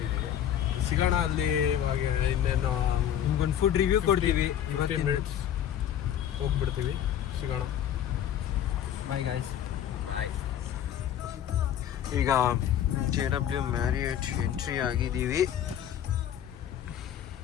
ಸಿಗೋಣ ಅಲ್ಲಿ. ಇವಾಗ ಇನ್ನೇನು ನಿಮ್ಗೊಂದು ಫುಡ್ ರಿವ್ಯೂ ಕೊಡ್ತೀವಿ. 15 ಮಿನಿಟ್ಸ್ ಹೋಗ್ಬಿಡ್ತೀವಿ. ಸಿಗೋಣ. Bye guys. ಬಾಯ್. ಈಗ JW ಮ್ಯಾರಿಯಟ್ ಎಂಟ್ರಿ ಆಗಿದ್ದೀವಿ.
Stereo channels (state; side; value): quieter; right; 10.3 dB